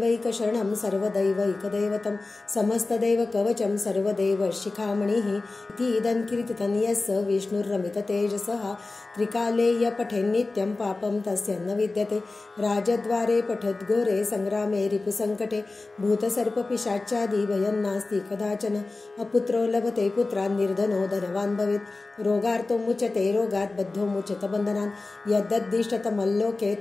सर्वदैवैकदैवतं समस्तदैवकवचं सर्वदेव शिखामणिः इति इदं कीर्तितं यस्य विष्णुर्रमिततेजसः त्रिकाले य पठेन्नित्यं पापं पापं तस्य न विद्यते राजद्वारे पठद्घोरे संग्रामे रिपुसङ्कटे भूतसर्पपिशाचादि भयं नास्ति कदाचन अपुत्रो लभते पुत्रान् निर्धनो धनवान् भवेत् रोगार्तो मुच्यते रोगात् बद्धो मुच्यत बन्धनान् यद्दद्दिष्टतमल्लोके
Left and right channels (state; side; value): quieter; right; 3.4 dB